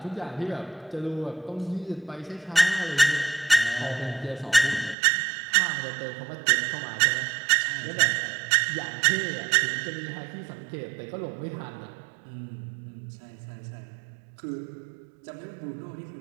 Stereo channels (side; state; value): left; drops out; at 5.0 s